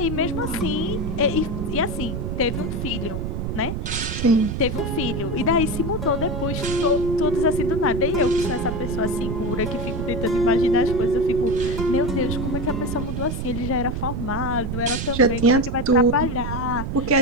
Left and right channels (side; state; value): right; noise; rumble, 3 dB below the sound